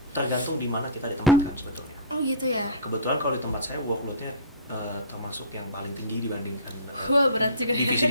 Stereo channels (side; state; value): both; inverted; correlation -0.34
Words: tergantung di mana kita ditempatkan sebetulnya. Oh gitu ya. Kebetulan kalau di tempat saya workloadnya termasuk yang paling tinggi dibandingkan Wah, berat juga ya.